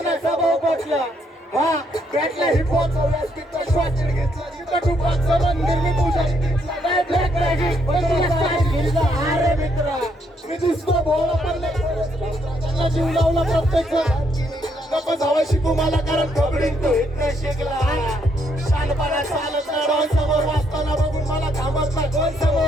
भाव पटला हा बॅटला हिपहॉप व्यासपीठचा श्वास घेतला जिथं टुपाचं मंदिर मी पूजारी घेतला नाही ब्लॅक मॅजिक अरे मित्रा मी दुसरं भोवला पण त्यांना जीव लावला प्रत्येक नको जावं शिकू मला कारण खबरीन तो इथं शिकला शानपणा चालत नाही डॉन समोर वाचताना बघून मला थांबत नाही दोन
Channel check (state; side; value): normal; both; correlation 0.73